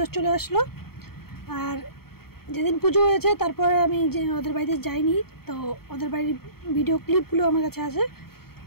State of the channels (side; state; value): right; late; 0.95 ms